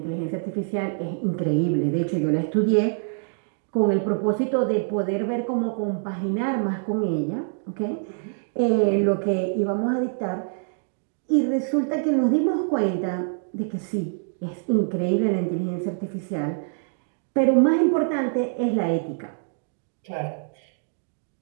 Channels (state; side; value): silent; left; digital silence